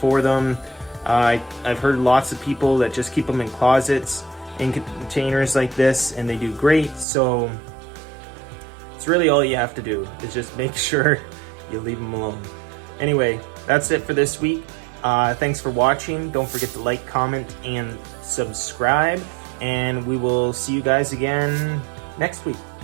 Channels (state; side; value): drops out; left; at 7.1 s